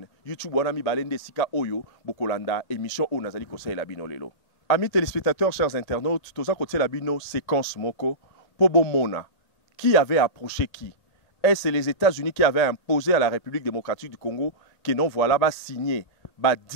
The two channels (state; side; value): late; right; 1.9 ms